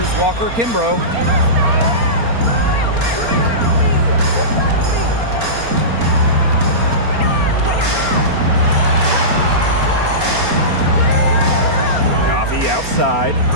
Walker Kimbrough. Coffee outside.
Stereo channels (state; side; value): late; left; 4.3 ms